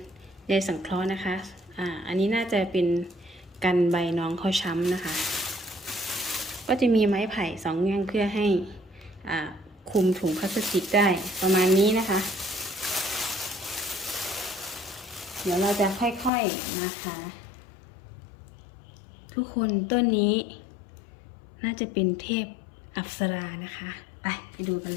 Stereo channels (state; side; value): drops out; right; at 16.3 s